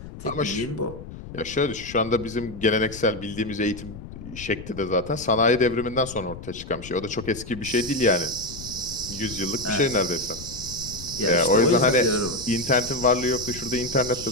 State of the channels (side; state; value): left; noise; rumble, 13 dB below the sound